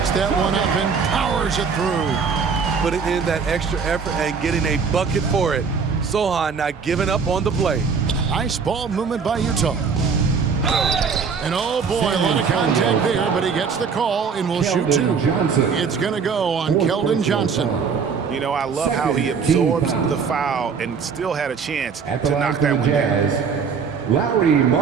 that one up and powers it through. Putting in that extra effort and getting a bucket for it. Sohan not giving up on the play. Nice ball movement by Utah. And oh boy, a lot of contact there, but he gets the call and will shoot 2. It's going to go on Keldon Johnson. You know, I love how he absorbs the foul and still had a chance to knock that one down. Lauri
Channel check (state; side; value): quieter; left; 5.8 dB